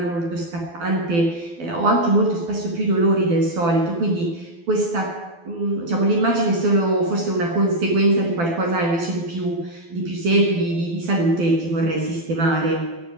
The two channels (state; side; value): late; left; 12 ms